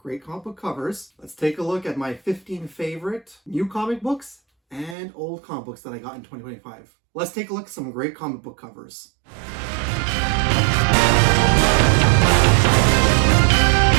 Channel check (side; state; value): left; drops out; at 5.0 s